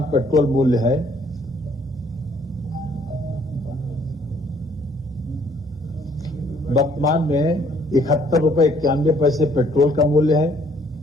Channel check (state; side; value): normal; both; correlation 0.62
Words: पेट्रोल मूल्य है, वर्तमान में ₹71.91 पेट्रोल का मूल्य है।